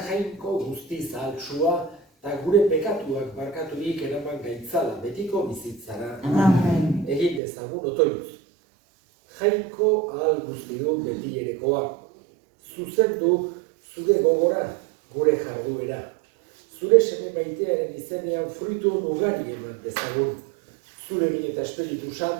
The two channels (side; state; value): left; drops out; at 7.4 s